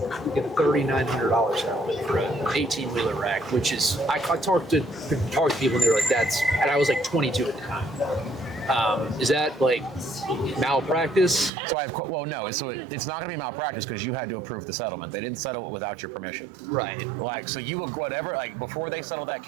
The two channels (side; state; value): left; drops out; at 11.5 s